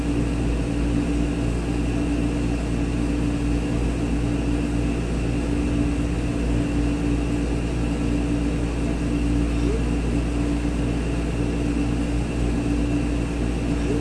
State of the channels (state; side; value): identical; both; correlation 1.00